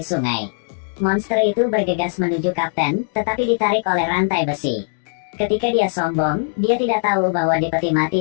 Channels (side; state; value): right; silent; digital silence